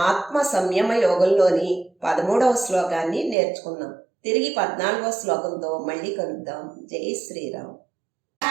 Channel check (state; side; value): drops out; left; at 3.4 s